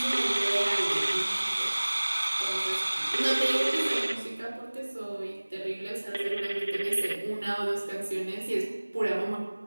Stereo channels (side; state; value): both; inverted; correlation -1.00